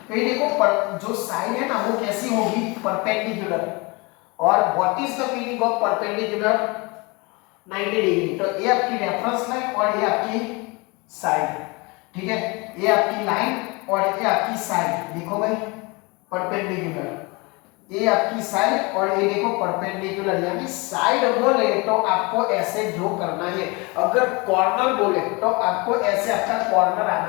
तो ये देखो जो साइड है ना वो कैसी होगी, परपेंडिकुलर। और what is the meaning of perpendicular, 90 degree. तो ये आपकी रेफरेंस लाइन और ये आपकी साइड, ठीक है, ये आपकी लाइन और ये आपकी साइड, देखो भाई परपेंडिकुलर, ये आपकी साइड और ये देखो परपेंडिकुलर, यानी साइड बोले तो आपको ऐसे ड्रॉ करना है, अगर कॉर्नर बोले तो आपको ऐसे आपका कॉर्नर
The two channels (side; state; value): right; quieter; 27.0 dB